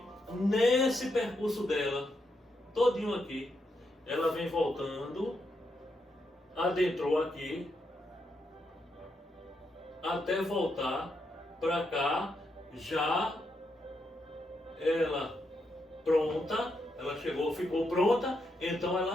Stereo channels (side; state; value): both; normal; correlation 0.81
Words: nesse percurso dela, todinho aqui, ela vem voltando, adentrou aqui, até voltar para cá, já ela pronta, ela chegou, ficou pronta, então